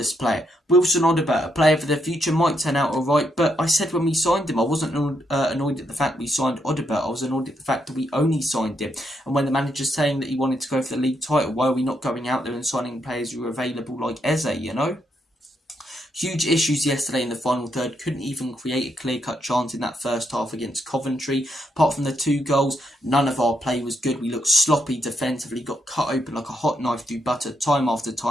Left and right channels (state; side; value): normal; both; correlation 0.78